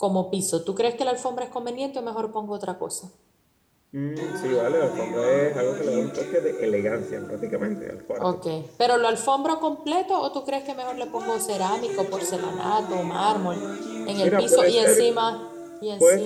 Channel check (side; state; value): both; identical; correlation 1.00